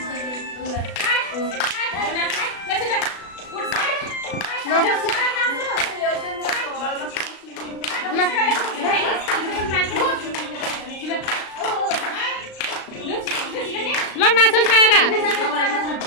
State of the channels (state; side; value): late; right; 36 ms